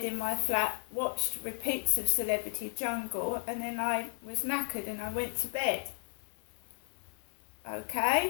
in my flat, watched repeats of Celebrity Jungle, and then I was knackered and I went to bed.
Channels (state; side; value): silent; right; 55 dB below the other